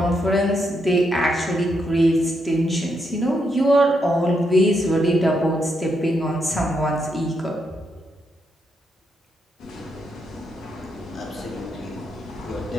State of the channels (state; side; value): normal; both; correlation 0.80